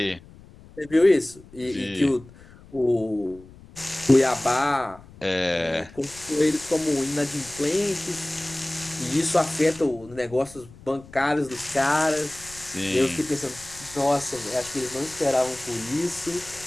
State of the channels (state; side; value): noise; left; rumble, 21 dB below the sound